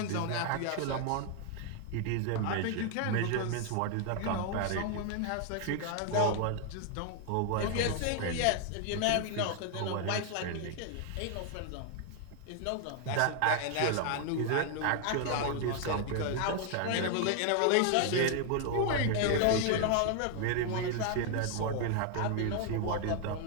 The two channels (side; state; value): both; different; correlation 0.00